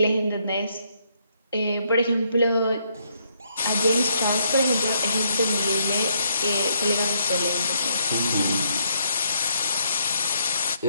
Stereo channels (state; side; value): inverted; both; correlation -0.73